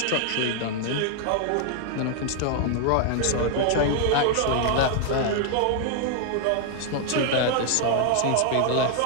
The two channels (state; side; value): different; both; correlation 0.00